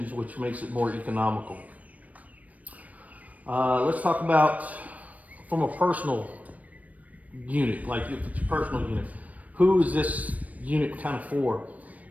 which makes it more economical. Let's talk about from a personal unit, like if it's a personal unit, who is this unit kind of for?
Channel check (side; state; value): left; late; 0.070 ms